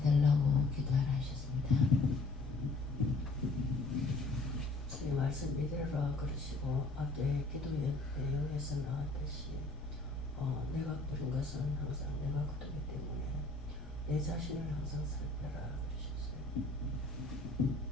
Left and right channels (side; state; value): right; quieter; 3.2 dB